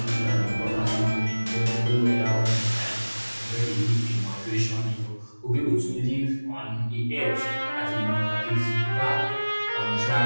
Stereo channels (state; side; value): inverted; both; correlation -1.00